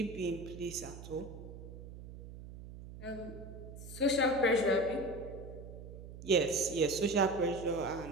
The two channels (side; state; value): right; noise; hum, 13 dB below the sound